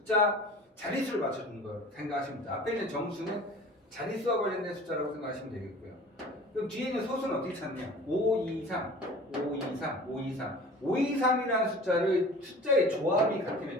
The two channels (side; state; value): both; normal; correlation 0.43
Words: 자릿수를 맞춰주는 걸 생각하시면 됩니다. 앞에 있는 정수는 자릿수와 관련된 숫자라고 생각하시면 되겠고요. 그럼 뒤에 있는 소수는 어떻게 찾냐? 523, 523, 523. 523이라는 숫자의 조합이 같으면